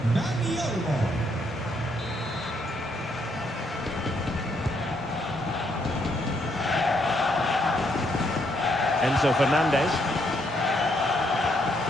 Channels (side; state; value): both; normal; correlation 0.73